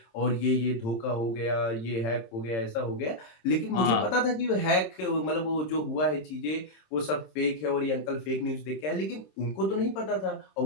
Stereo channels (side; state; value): right; late; 26 ms